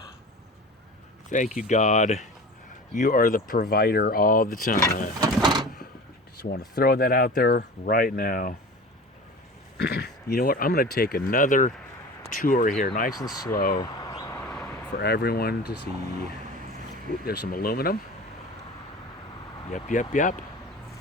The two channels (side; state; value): both; normal; correlation 0.36